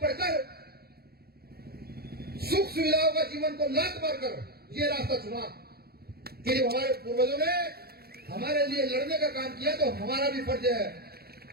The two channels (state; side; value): late; left; 0.45 ms